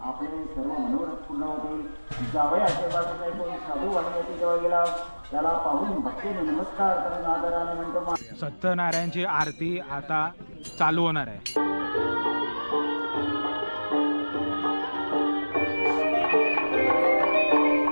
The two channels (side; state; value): both; inverted; correlation -1.00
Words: आपले सर्व मनोरथ पूर्ण होतील. जावयाचे बाजूला कोणी साधू वाढण्याची जवळ गेला त्याला पाहून भक्तीने नमस्कार करून आदराने म्हणतो. सत्यनारायणची आरती आता चालू होणार आहे.